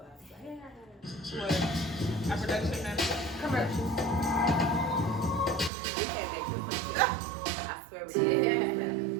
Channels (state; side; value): drops out; left; at 5.7 s